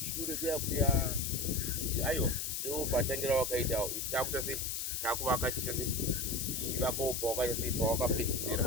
kuya kuti aiwa ndo patangira wakaita isi takuita sei takuvaka chiita sei tichivakawo pawakaita sei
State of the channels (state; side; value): noise; left; hiss, 2 dB below the sound